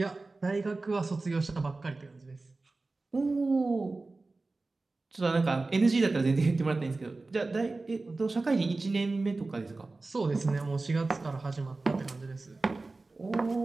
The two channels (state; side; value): quieter; left; 3.4 dB